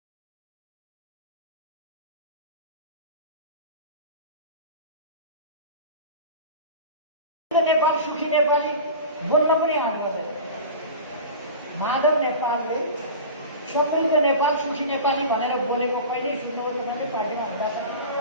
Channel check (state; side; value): inverted; both; correlation -0.33